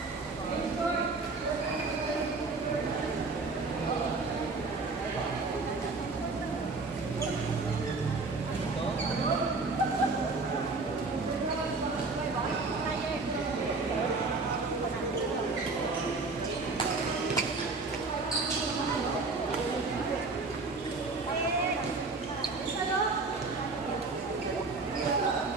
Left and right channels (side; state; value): left; quieter; 3.8 dB